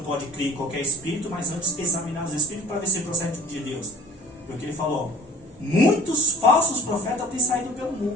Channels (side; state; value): both; normal; correlation 0.48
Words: pode crer em qualquer espírito, mas antes examinar os espíritos para ver se procede de Deus. Porque ele falou, muitos falsos profetas têm saído pelo